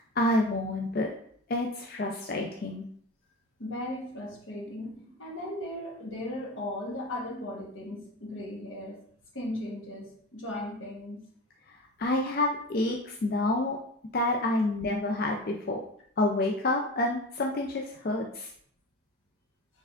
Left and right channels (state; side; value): normal; both; correlation 0.30